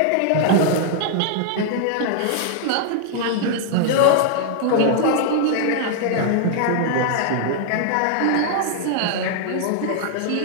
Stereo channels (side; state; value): both; different; correlation -0.01